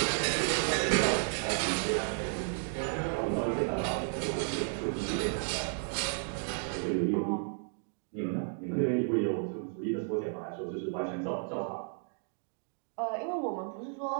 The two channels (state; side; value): silent; left; 56 dB below the other